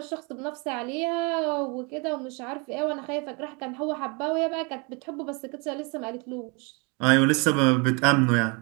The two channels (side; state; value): left; quieter; 31.2 dB